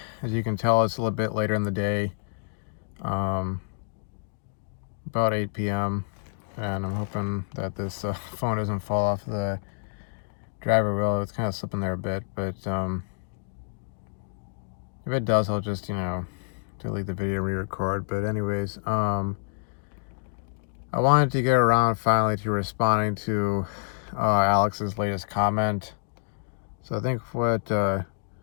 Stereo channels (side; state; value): right; silent; digital silence